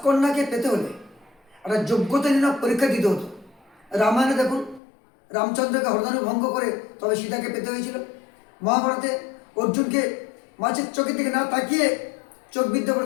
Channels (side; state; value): right; drops out; at 4.8 s